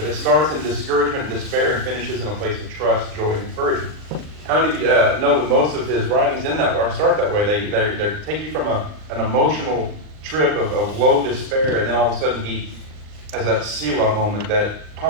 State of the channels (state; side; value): late; left; 39 ms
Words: it starts in discouragement and despair and finishes in a place of trust, joy, and encouragement. How many of you know that most of his writings in that or start that way? They take you from an emotional trip of low despair, and then all of a sudden he has that Selah moment, that